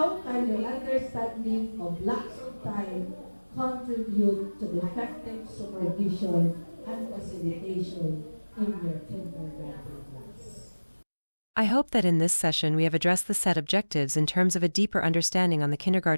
your understanding of blocks of time contribute to the effective supervision and facilitation in your kindergarten class? I hope that in this session we have addressed the set objectives in terms of a deeper understanding on the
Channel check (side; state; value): both; inverted; correlation -1.00